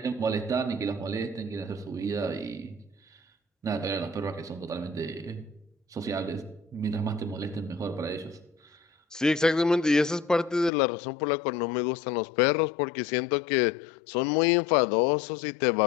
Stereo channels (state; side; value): drops out; right; at 10.7 s